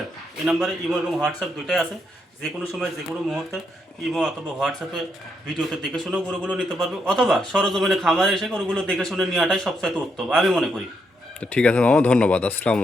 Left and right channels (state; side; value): normal; both; correlation 0.78